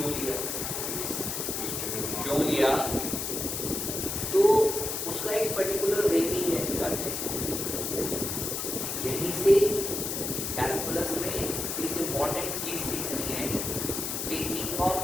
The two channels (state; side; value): noise; left; hiss, 3 dB below the sound